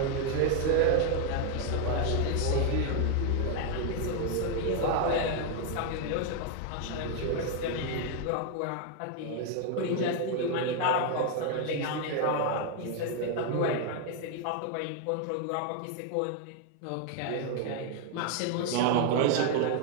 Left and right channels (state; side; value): different; both; correlation 0.00